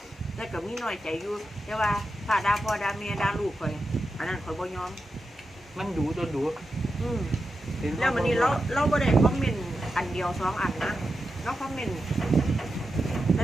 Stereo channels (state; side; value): normal; both; correlation 0.89